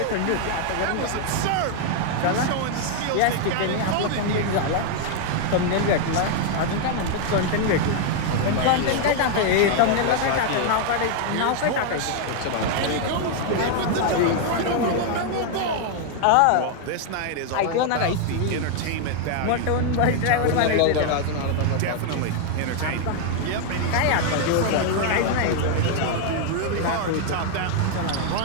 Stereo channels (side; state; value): both; different; correlation 0.00